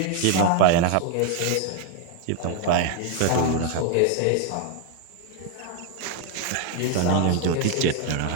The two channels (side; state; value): both; different; correlation 0.00